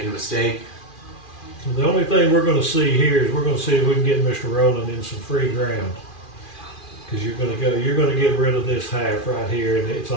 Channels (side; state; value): right; late; 2.4 ms